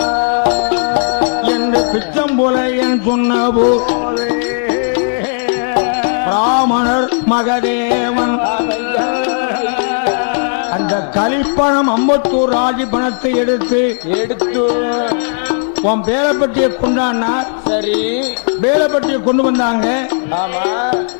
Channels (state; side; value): silent; right; digital silence